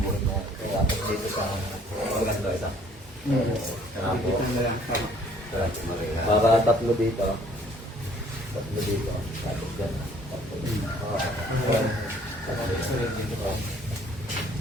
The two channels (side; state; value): both; normal; correlation 0.59